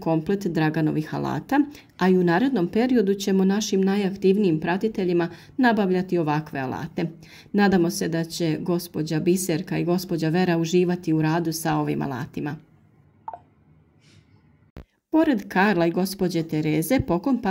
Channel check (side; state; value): both; identical; correlation 1.00